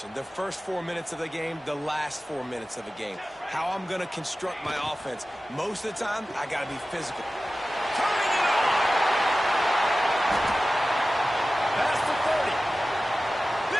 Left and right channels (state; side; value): normal; both; correlation 0.95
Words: The first 4 minutes of the game, the last 4 minutes of the game. How I'm going to construct my offense. Most of the time, I got to be physical. Turning it on! Past the 30.